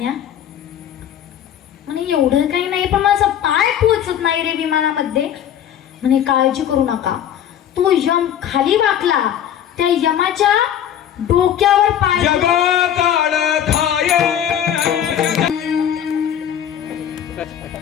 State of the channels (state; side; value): quieter; right; 9.9 dB